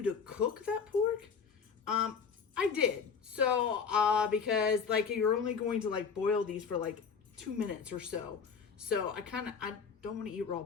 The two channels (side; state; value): right; quieter; 6.1 dB